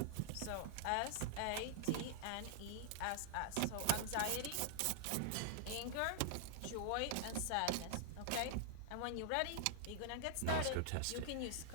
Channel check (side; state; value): both; different; correlation -0.01